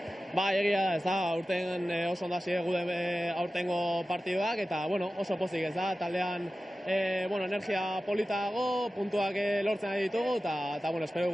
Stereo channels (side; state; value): both; normal; correlation 0.95